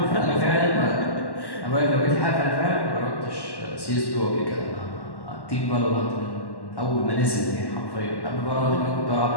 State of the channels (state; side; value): late; right; 1.1 ms